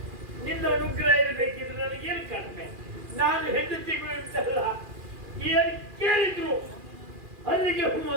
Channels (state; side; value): late; left; 2.4 ms